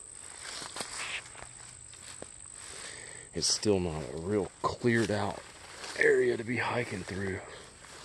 it's still not a real cleared out area to be hiking through.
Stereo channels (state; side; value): identical; both; correlation 1.00